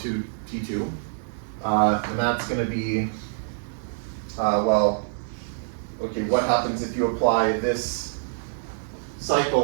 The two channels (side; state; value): left; silent; digital silence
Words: T2. And that's going to be, okay, what happens if you apply this